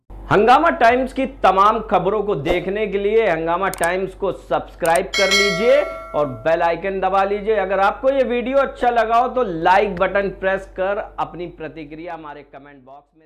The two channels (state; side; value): identical; both; correlation 1.00